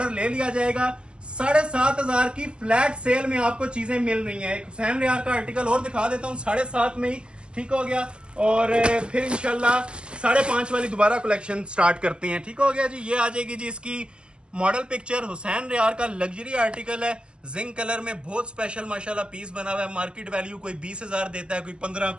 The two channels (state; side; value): late; left; 0.050 ms